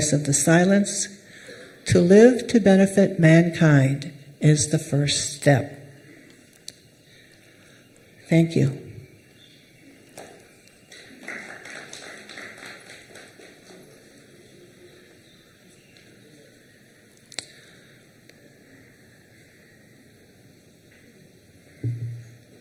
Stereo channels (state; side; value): identical; both; correlation 1.00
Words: of the Silence, to live to benefit mankind is the first step. Thank you.